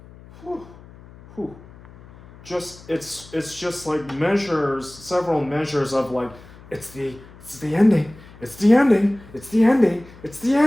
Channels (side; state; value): left; noise; hum, 21 dB below the sound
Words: it's just like measures, several measures of like it's the ending, it's the ending, it's the ending, it's the